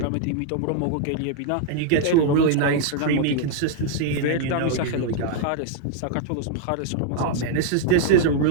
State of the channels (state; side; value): different; both; correlation 0.00